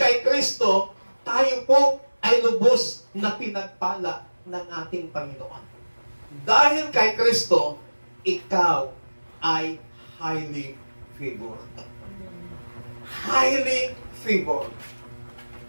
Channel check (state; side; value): inverted; both; correlation -1.00